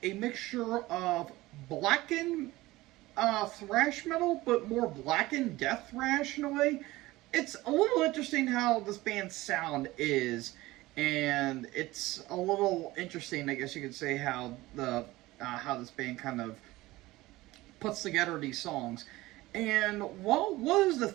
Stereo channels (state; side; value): quieter; left; 18.8 dB